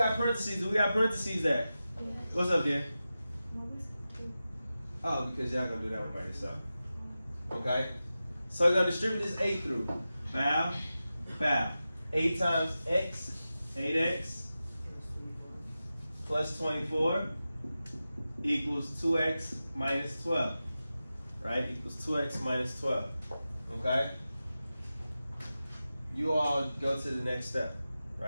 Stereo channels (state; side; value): inverted; both; correlation -0.93